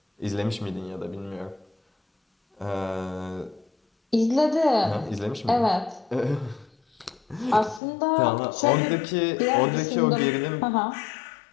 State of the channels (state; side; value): drops out; right; at 7.8 s